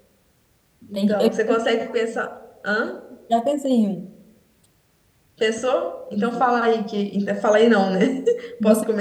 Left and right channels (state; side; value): identical; both; correlation 1.00